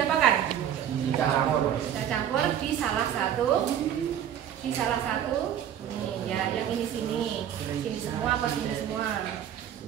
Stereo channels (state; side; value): quieter; left; 10.0 dB